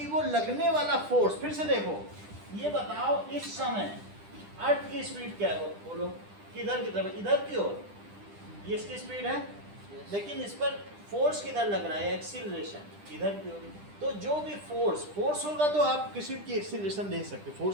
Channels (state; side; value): late; left; 10 ms